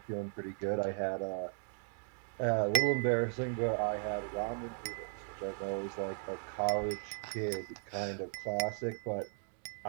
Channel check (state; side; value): silent; left; 53 dB below the other